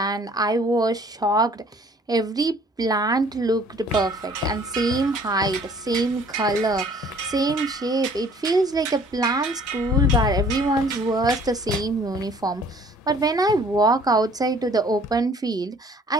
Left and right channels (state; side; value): normal; both; correlation 0.55